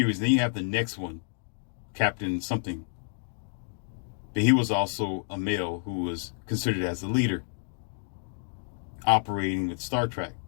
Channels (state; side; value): silent; right; digital silence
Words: Then you have the next one, Captain something. But he was also a male who was considered as a leader operating with Star Trek.